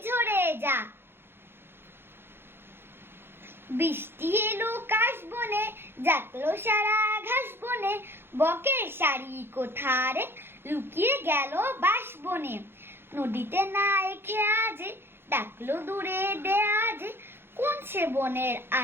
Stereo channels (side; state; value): left; late; 0.11 ms